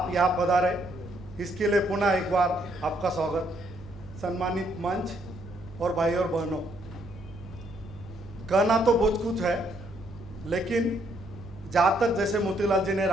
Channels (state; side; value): normal; both; correlation 0.71